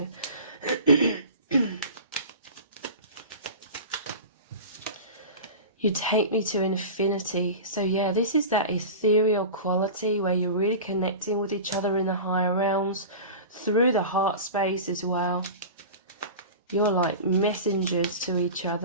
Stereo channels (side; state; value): both; inverted; correlation -0.33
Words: You take me to infinity. So yeah, this is that ethereal quality where you're really connecting with each other in the higher realms, through the heart space as well. You're like messengers to each